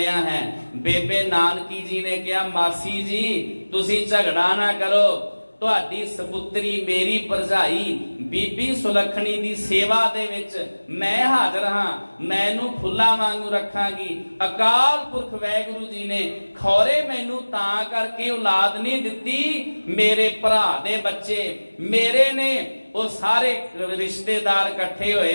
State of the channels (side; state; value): both; inverted; correlation -1.00